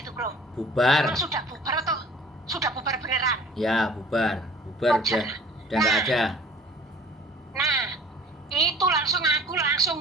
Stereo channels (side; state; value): both; normal; correlation 0.48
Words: itu bro? Bubar. Emang sudah bubar atau sudah bubar beneran? Ya, bubar. Bubar Pokjar. udah nggak ada. Nah, itu aku